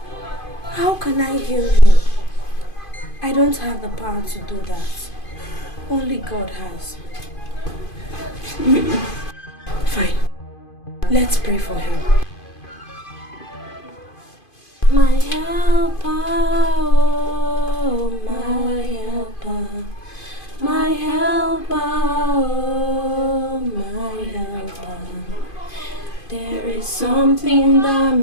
how can I heal him? I don't have the power to do that. Only God has. Fine. Let's pray for him. My helper. something that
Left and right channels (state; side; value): late; right; 2.5 ms